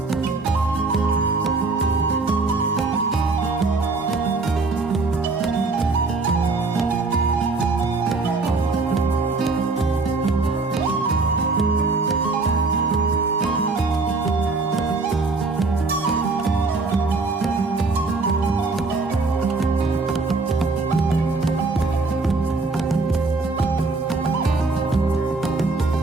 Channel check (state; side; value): quieter; left; 3.7 dB